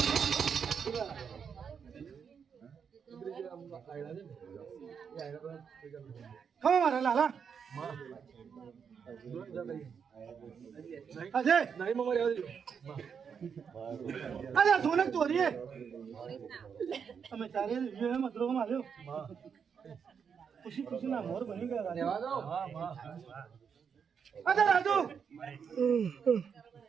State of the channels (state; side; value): quieter; left; 6.8 dB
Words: ખમા મારા લાલા અજય અરે સોનક ચોરીએ અમે ચારે મતરો માર્યો ખુશી ના મોર બની ગયા અરે રાજુ